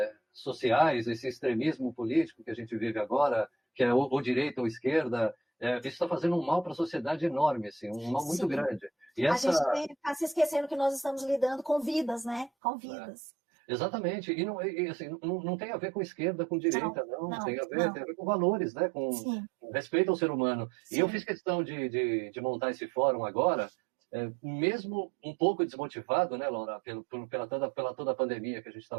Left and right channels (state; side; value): drops out; left; at 12.5 s